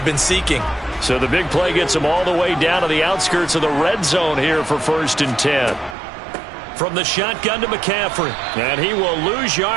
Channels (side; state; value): left; drops out; at 6.0 s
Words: been seeking. So the big play gets them all the way down to the outskirts of the red zone here for 1st and 10. From the shotgun to McCaffrey. And he will lose